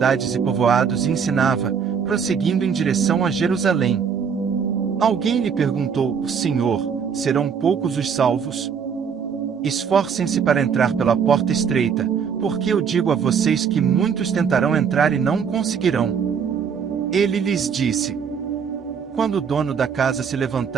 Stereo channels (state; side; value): quieter; left; 6.7 dB